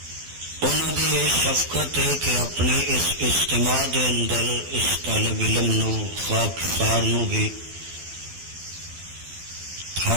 انہاں دی یہ شفقت ہے کہ اپنے اس اجتماع دے اندر اس طالب علم نو خاکسار نو بھی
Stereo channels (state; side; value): late; left; 12 ms